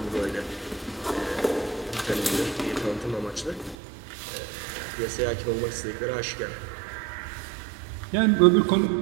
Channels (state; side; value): drops out; left; at 3.8 s